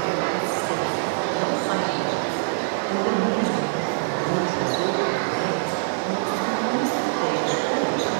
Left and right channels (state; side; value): silent; left; digital silence